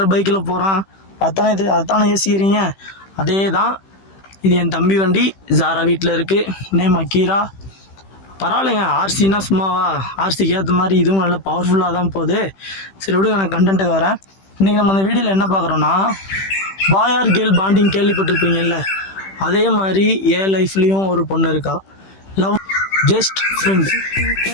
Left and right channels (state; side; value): late; right; 15 ms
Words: பைக்கில் போகிறான். அதானே யோசிக்கிறீங்க. அதே தான், இது என் தம்பி வண்டி. ஜாரா வீட்டில் இருக்குது. நேம் அக்கீரா. பரவாயில்லைங்க, ஆர்சின்னா சும்மாவா? ஆர்சிக்கு ஏற்ற மாதிரி இதுவும் நல்ல பவர்ஃபுல்லாக தான் போகுது. சரி விடுங்க, நான் கண்டென்ட்டுக்கு வரேன். இன்றைக்கி நம்ம அந்த வீடியோவில் என்ன பார்க்குறோன்னா, பாய் ஆர் கேர்ள் பாண்டிங் கேள்விப்பட்டிருப்பீங்கல்ல, அதே மாதிரி என் லைஃப்லேயும் ஒரு பொண்ணு இருக்கா. Love just friend.